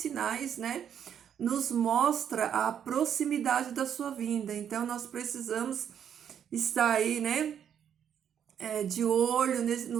né, nos mostra a proximidade da sua vinda. Então nós precisamos estar aí, né, de olho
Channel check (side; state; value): left; quieter; 8.8 dB